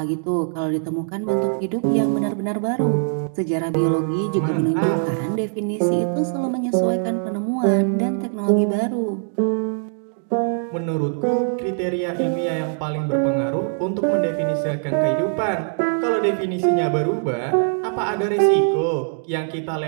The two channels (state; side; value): silent; left; digital silence